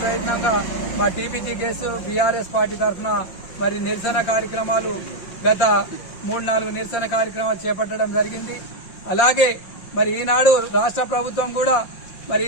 ప్రయత్నంగా మా టీపీజీకేఎస్ బీఆర్ఎస్ పార్టీ తరఫున మరి నిరసన కార్యక్రమాలు గత 3-4 నిరసన కార్యక్రమాలు చేపట్టడం జరిగింది. అలాగే మరి ఈనాడు రాష్ట్ర ప్రభుత్వం కూడా మరి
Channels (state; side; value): late; right; 5.6 ms